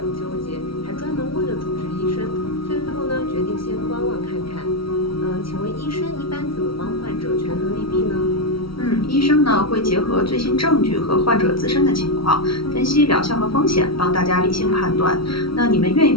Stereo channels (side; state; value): right; late; 0.75 ms